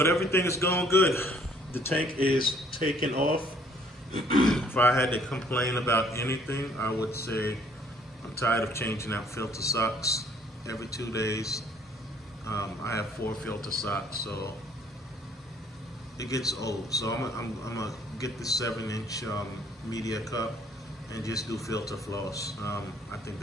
everything is going good. The tank is taking off. If I had to complain about anything, I would say I'm tired of changing out filter socks every 2 days. I have 4 filter socks, so it gets old. So I'm gonna get the 7-inch media cup and just do filter floss. I think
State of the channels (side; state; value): both; normal; correlation 0.61